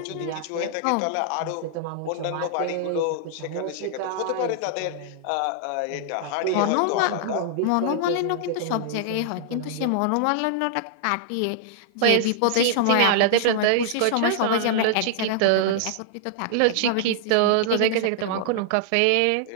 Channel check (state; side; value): different; both; correlation -0.01